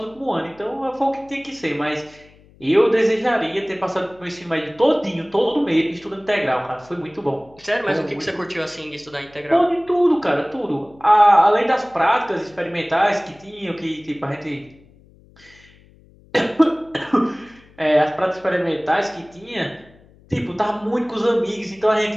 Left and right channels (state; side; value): noise; left; hum, 27 dB below the sound